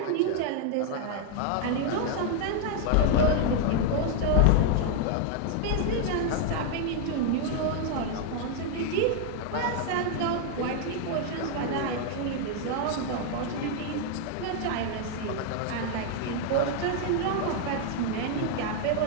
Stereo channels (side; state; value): both; different; correlation 0.00